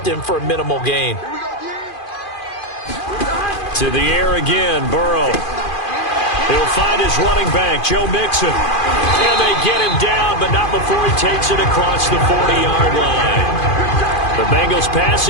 him for a minimal gain. To the air again, Burrow. He'll find his running back, Joe Mixon. And they get him down, but not before he takes it across the 40-yard line. The Bengals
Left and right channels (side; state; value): right; late; 2.4 ms